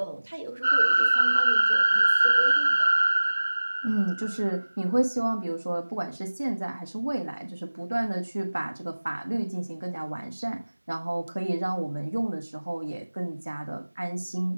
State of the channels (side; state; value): both; inverted; correlation -1.00